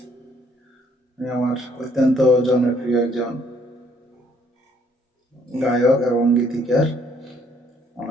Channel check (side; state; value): both; normal; correlation 0.65